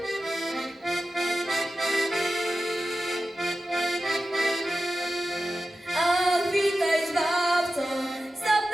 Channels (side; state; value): both; normal; correlation 0.93